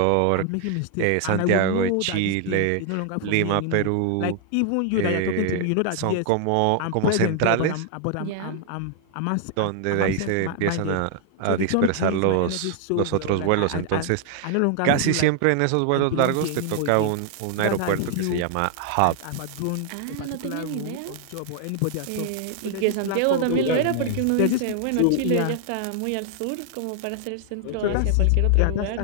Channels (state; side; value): different; both; correlation 0.00